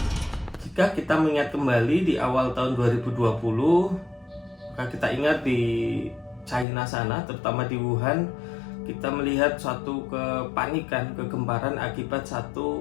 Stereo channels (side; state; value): right; drops out; at 6.7 s